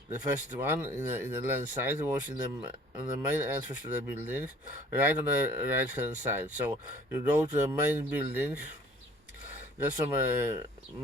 the first one in the landside was on the main entrance to the building, right on the right hand side. So you go to the main building, just from a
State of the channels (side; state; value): both; normal; correlation 0.53